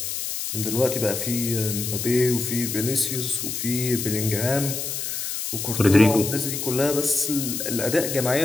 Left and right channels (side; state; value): left; noise; hiss, 4 dB below the sound